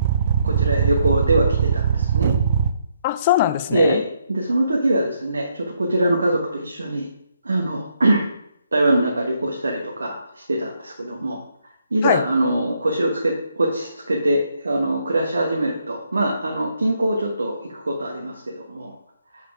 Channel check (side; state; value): both; inverted; correlation -0.74